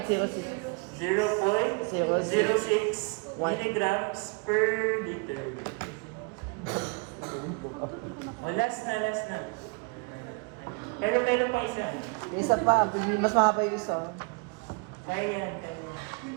0.06 milligrams per liter. Last na. Pero meron pa isa. Isa pa, mas mahaba yung isa. Kaya yan.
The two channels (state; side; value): quieter; left; 31.8 dB